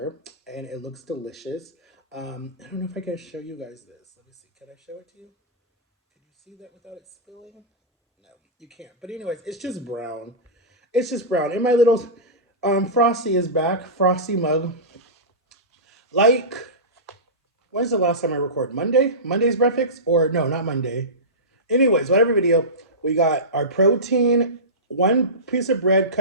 and it looks delicious. I don't know if I can show you guys this. Let me see. Can I show it to you? Can you see that without it spilling? No, you can't. But anyways, it's just brown. It's just brown. And my little Frosty is back. Frosty mug. Like, when's the last time I recorded? Monday? Monday's breakfast? Or no, not Monday. Anyways, whatever video, we got our protein, 1 piece of bread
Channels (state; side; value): normal; both; correlation -0.19